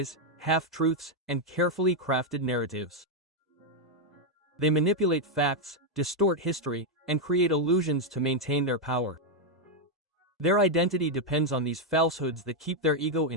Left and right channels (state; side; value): normal; both; correlation 0.01